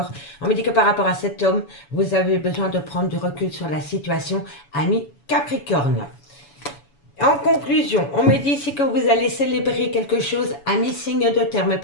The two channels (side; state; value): right; late; 7.0 ms